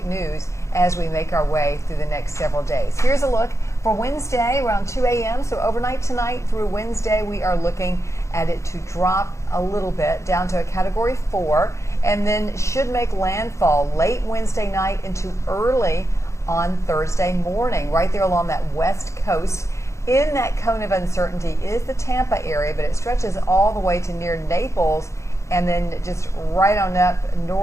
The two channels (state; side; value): late; right; 0.14 ms